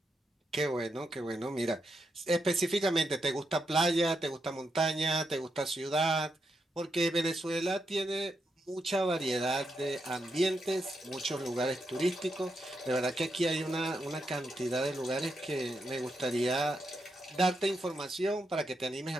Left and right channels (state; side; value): normal; both; correlation 0.83